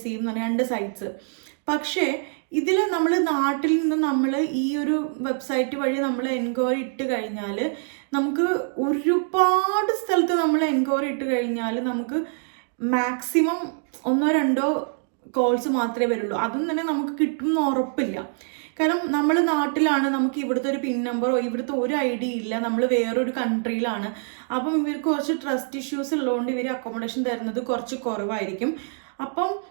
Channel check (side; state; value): left; silent; 62 dB below the other